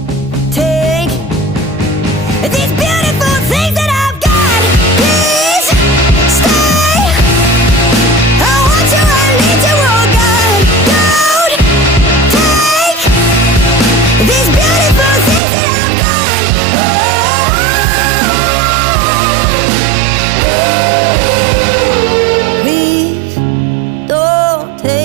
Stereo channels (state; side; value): drops out; left; at 15.4 s